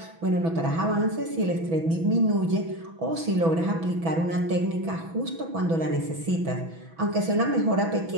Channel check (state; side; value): late; left; 6.1 ms